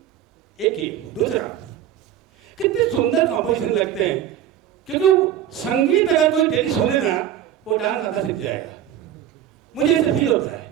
एक ही दूसरा कितने सुंदर कॉम्पोजिशन लगते हैं, क्योंकि संगीत अगर कोई डेली सुने ना वो डांस आधा सीख जाएगा। मुझे ऐसे फील होता है,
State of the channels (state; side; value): quieter; left; 10.8 dB